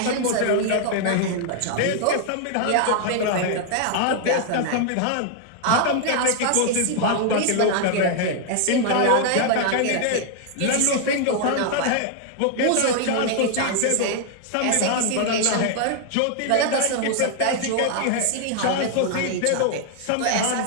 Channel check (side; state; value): both; different; correlation 0.00